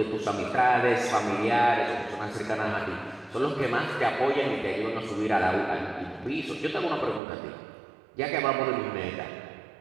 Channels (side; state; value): left; drops out; at 7.2 s